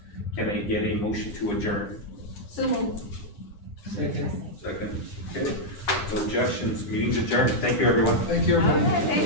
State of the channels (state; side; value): late; right; 9.9 ms